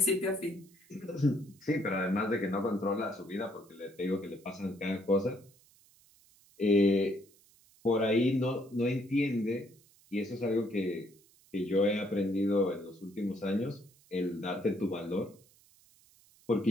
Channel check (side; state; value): right; noise; hiss, 29 dB below the sound